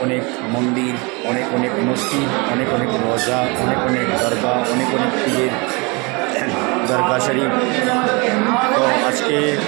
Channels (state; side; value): quieter; left; 28.7 dB